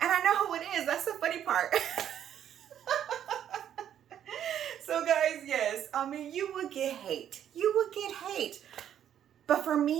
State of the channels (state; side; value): quieter; left; 10.0 dB